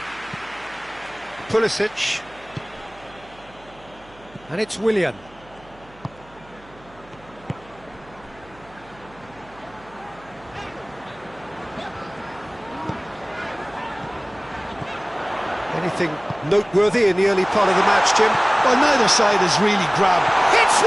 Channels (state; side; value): noise; right; hum, 25 dB below the sound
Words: Pulisic. And it's Willian. Anything noteworthy in the early part of the match, Jim? Well, neither side has really grabbed. Hits